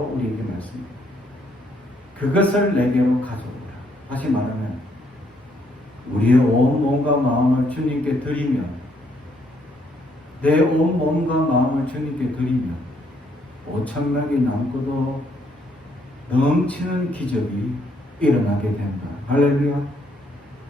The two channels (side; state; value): both; normal; correlation 0.71